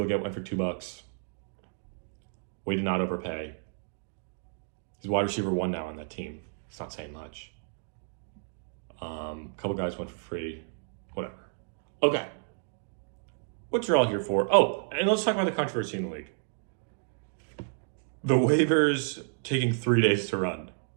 Legette went for $2. Way to not overpay. He's wide receiver 1 now on that team. It's not saying much. Couple guys went for free. Whatever. Okay. What you're all here for? Oh, and let's talk about the controversy in the league. The waivers taking 3 days to run.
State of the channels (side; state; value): left; silent; 57 dB below the other